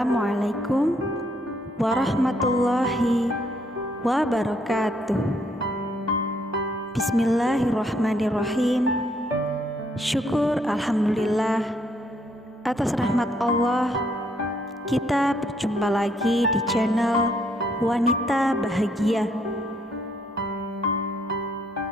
warahmatullahi wabarakatuh. Bismillahirrahmanirrahim. Syukur alhamdulillah atas rahmat Allah, kita berjumpa lagi di channel Wanita Bahagia.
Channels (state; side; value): normal; both; correlation 0.70